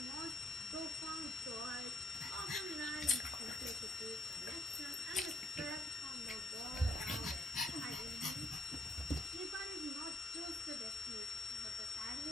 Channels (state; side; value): normal; both; correlation 0.70